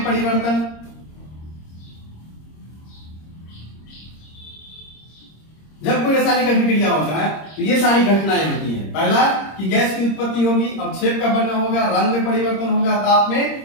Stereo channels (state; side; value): late; right; 26 ms